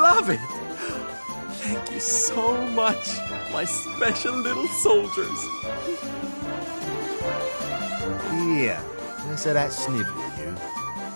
it! Thank you so much, my special little soldiers. Here, less of that snivelling, you.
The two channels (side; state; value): both; inverted; correlation -1.00